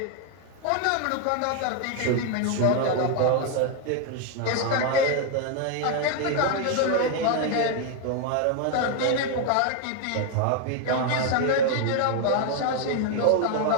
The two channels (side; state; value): both; different; correlation 0.01